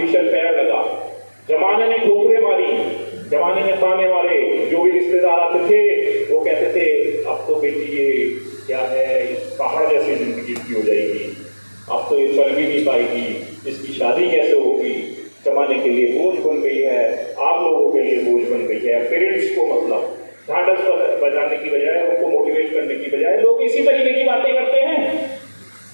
पैर लगा। जमाने ने ठोकरें मारी, जमाने ने ताने मारे। जो भी रिश्तेदार आते थे वो कहते थे, अब तो बेटी ये क्या है, पहाड़ जैसी जिंदगी की हो जाएगी, अब तो ये चल भी नहीं पाएगी, इसकी शादी कैसे होगी, जमाने के लिए बोझ बन गई है, आप लोगों के लिए बोझ बन गई है। पेरेंट्स को मतलब ढांढस बजाने की बजाय, उनको मोटिवेट करने की बजाय लोग इसी तरीके की बातें करते हैं।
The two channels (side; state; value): both; inverted; correlation -1.00